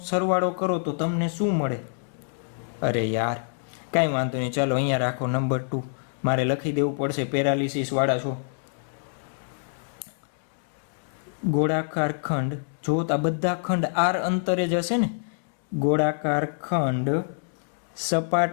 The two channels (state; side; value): silent; right; digital silence